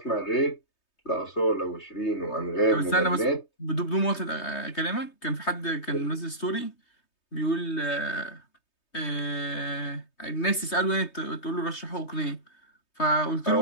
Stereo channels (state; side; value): late; right; 3.2 ms